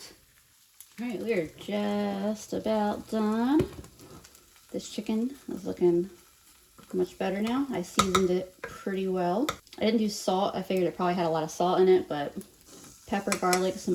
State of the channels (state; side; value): identical; both; correlation 1.00